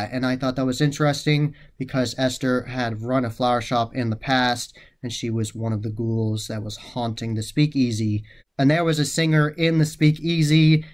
and I thought that was interesting because Esther had run a flower shop in the past, and she was one of the ghouls that was haunting the Speakeasy. And there was a singer in the Speakeasy,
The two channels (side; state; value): both; identical; correlation 1.00